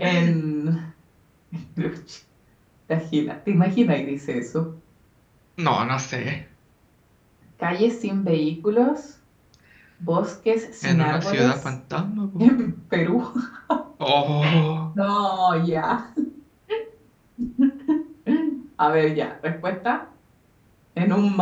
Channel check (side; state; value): both; identical; correlation 1.00